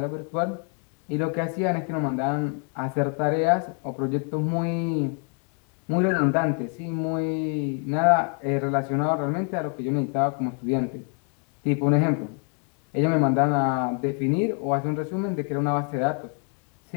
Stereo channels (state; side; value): quieter; right; 39.1 dB